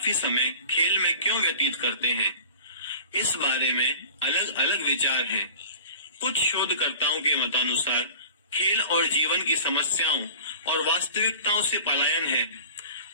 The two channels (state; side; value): inverted; both; correlation -0.41